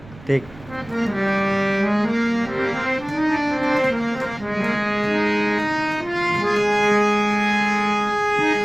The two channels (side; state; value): right; noise; rumble, 20 dB below the sound